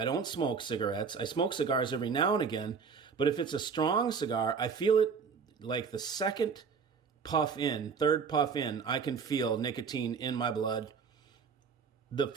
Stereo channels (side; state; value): left; quieter; 5.8 dB